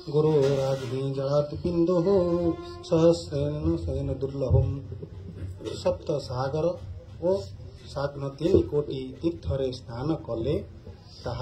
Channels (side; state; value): both; identical; correlation 1.00